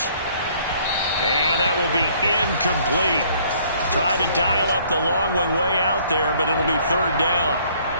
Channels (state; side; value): inverted; both; correlation -0.60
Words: And that will be incomplete. Tried to dial up the long way out there, but it'll be 3rd down.